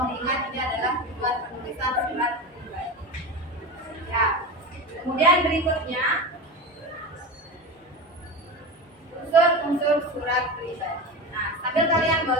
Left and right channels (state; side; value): normal; both; correlation 0.25